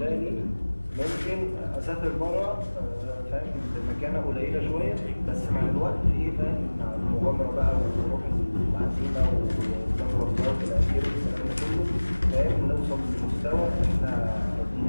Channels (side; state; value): both; inverted; correlation -1.00